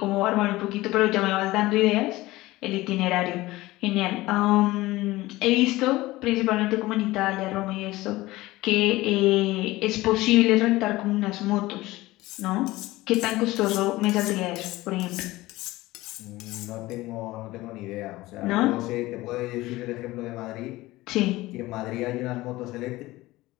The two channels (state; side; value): quieter; right; 18.7 dB